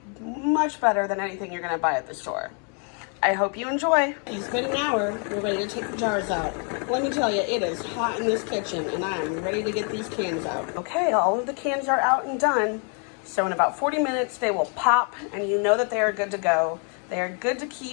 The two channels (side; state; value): right; quieter; 39.8 dB